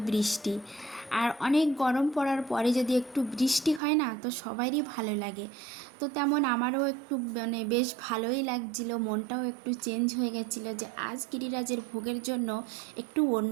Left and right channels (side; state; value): left; drops out; at 3.8 s